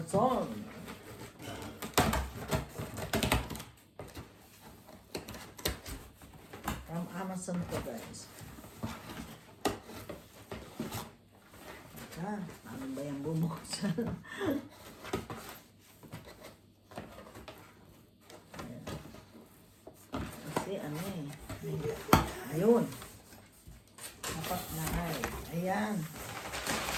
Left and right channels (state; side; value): identical; both; correlation 1.00